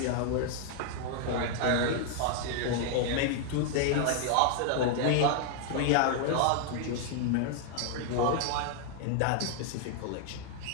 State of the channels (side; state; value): both; different; correlation -0.01